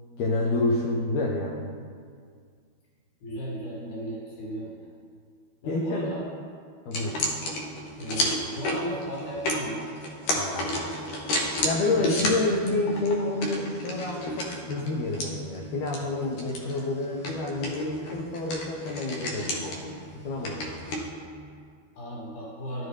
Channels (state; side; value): late; right; 12 ms